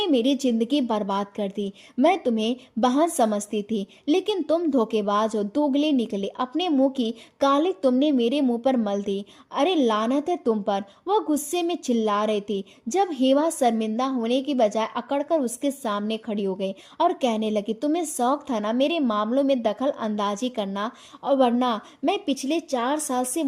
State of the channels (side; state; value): both; identical; correlation 1.00